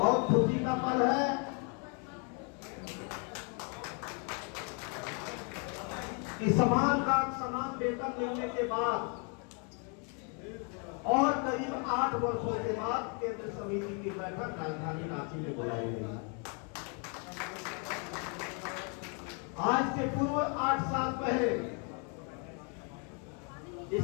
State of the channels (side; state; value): right; quieter; 37.6 dB